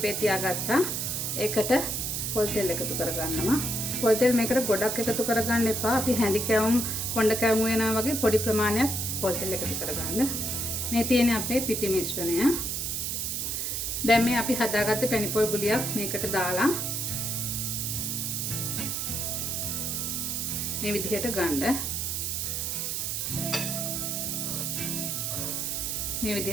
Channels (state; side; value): noise; right; hiss, 1 dB below the sound